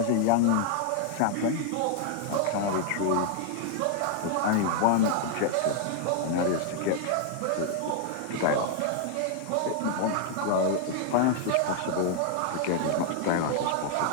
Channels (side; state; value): both; different; correlation 0.00